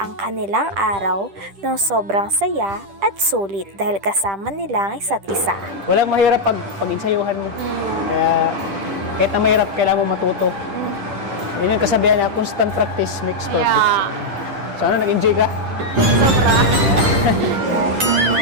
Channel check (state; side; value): late; left; 10 ms